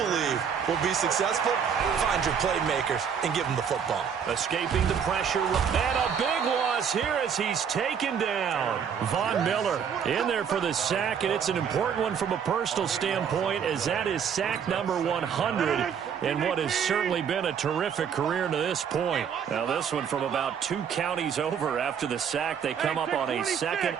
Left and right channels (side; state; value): left; quieter; 7.5 dB